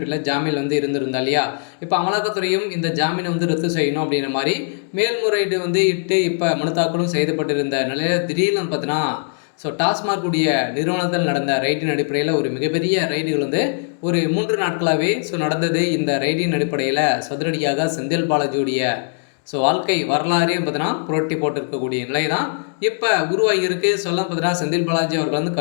ஜாமீன் இருந்திருந்தா இல்லையா. இப்போ அமலாக்கத்துறையும் இந்த ஜாமீனை ரத்து செய்யணும் அப்படின்ற மாதிரி மேல்முறையீடு இட்டு இப்போ மனு தாக்கலும் செய்யப்பட்டிருந்த நிலையில் திடீர்னு பார்த்தீங்கன்னா டாஸ்மாக் உடைய நிறுவனத்தில் நடந்த ரைடின் அடிப்படையில் ஒரு மிகப்பெரிய ரைடுகள் ஒரு 3 நாட்களாகவே நடந்தது. இந்த ரைடின் அடிப்படையில் சதுரடியாக செந்தில் பாலாஜியுடைய வாழ்க்கை வரலாறே பார்த்தீங்கன்னா புரட்டி போட்டிருக்கக்கூடிய நிலை தான் இப்போ உருவாகியிருக்கு. பார்த்தீங்கன்னா செந்தில் பாலாஜி அவர்கள்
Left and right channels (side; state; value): right; silent; digital silence